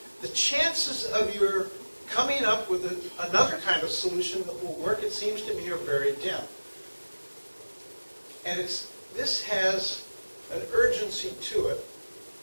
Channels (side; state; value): both; inverted; correlation -1.00